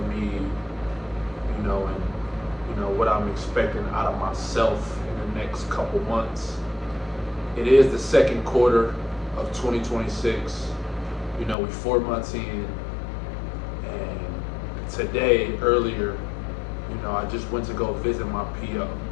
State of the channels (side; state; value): right; drops out; at 11.6 s